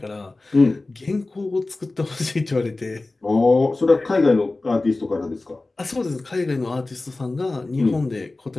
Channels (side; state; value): right; quieter; 3.2 dB